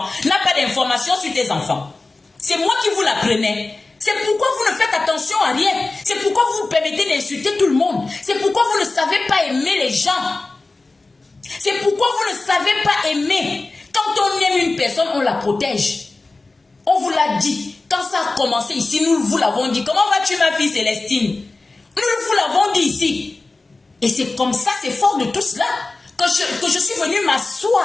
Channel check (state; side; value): quieter; right; 3.4 dB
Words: n'a pas d'informations sur tes enfants. C'est moi qui vous l'apprenais. C'est pourquoi vous ne faites attention à rien. C'est pourquoi vous vous permettez d'insulter tout le monde. C'est pourquoi vous ne savez pas aimer les gens. C'est pourquoi vous ne savez pas aimer. Quand on aime une personne, on la protège. On vous l'a dit. Quand ça a commencé ici, nous vous l'avons dit. Comment vas-tu, ma fille Célestine? Nous vous l'avons dit ici. Et c'est comme ça, c'est fort de tout cela que je suis venue